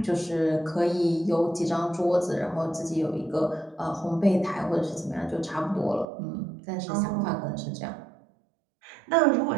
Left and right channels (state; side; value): drops out; left; at 6.1 s